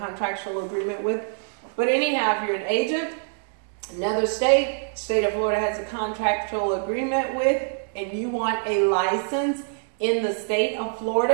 agreement with. But anyhow, if you're an agent, another state of Florida has a contractual agreement with, and you want a license in the state of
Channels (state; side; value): silent; left; 62 dB below the other